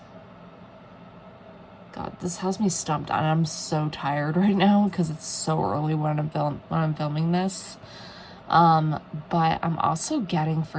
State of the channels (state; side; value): identical; both; correlation 1.00